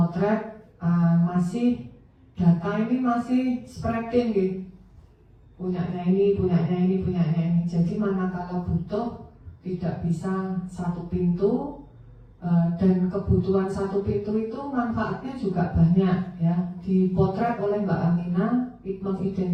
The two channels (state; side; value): identical; both; correlation 1.00